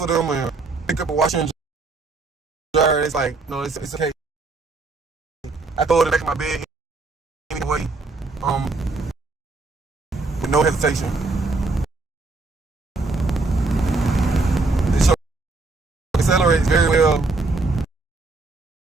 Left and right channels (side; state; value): left; quieter; 3.5 dB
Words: them and pick up a washer and dryer, it's like, no, it's okay. I throw it in the back of my bed anyway, with no hesitation. This truck accelerates very well,